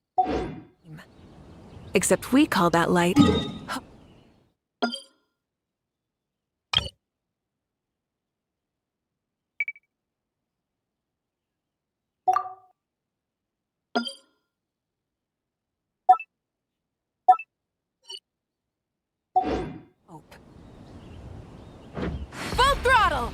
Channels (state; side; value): identical; both; correlation 1.00